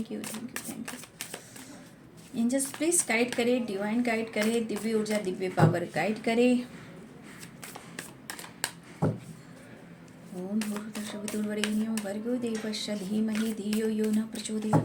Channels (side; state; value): both; identical; correlation 1.00